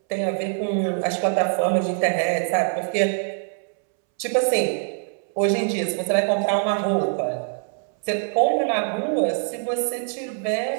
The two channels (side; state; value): left; silent; 63 dB below the other